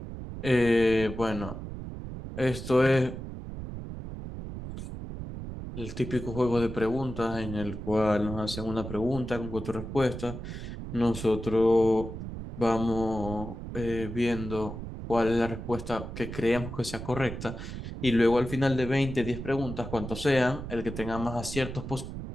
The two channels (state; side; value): noise; right; rumble, 8 dB below the sound